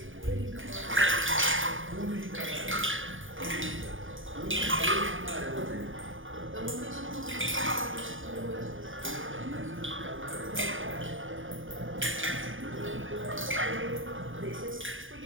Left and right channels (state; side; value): late; left; 0.58 ms